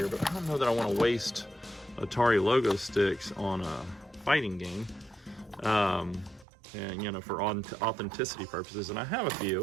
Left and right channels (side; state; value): left; drops out; at 6.5 s